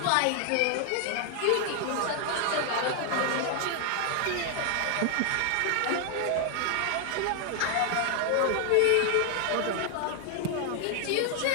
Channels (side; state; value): both; different; correlation 0.00